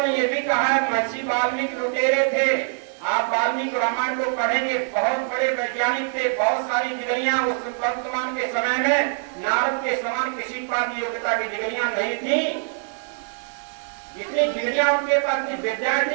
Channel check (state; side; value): silent; left; 61 dB below the other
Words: ने ये भी कहा है महर्षि वाल्मीकि लुटेरे थे, आप वाल्मीकि रामायण को पढ़ेंगे, बहुत बड़े वैज्ञानिक थे, बहुत सारी डिग्रियां उस वर्तमान के समय में नारद के समान किसी के पास योग्यता की डिग्रियां नहीं थी। इतनी डिग्रियां उनके पास थी, विद्याएं